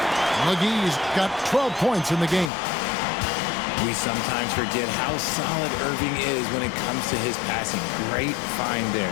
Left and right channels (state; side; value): drops out; right; at 2.5 s